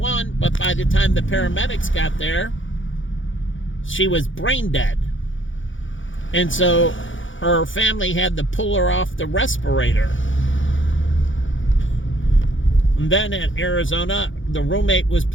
but by the time the paramedics got there, she was brain dead. And so her family had to pull her off the respirator. And then at Arizona, the roommate was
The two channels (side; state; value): right; late; 0.56 ms